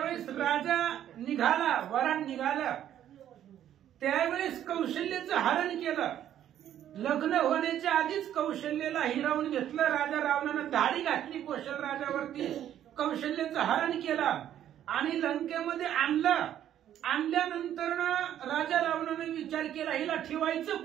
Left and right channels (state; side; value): quieter; left; 11.0 dB